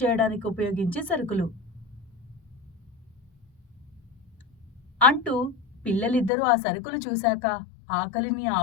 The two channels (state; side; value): drops out; right; at 6.3 s